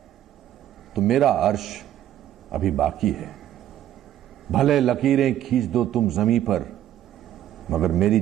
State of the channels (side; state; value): left; quieter; 12.1 dB